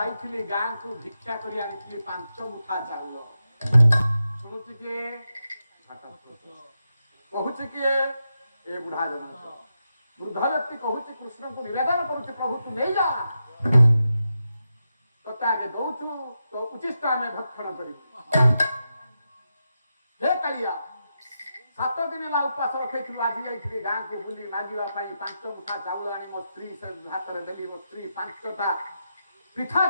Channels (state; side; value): inverted; both; correlation -0.87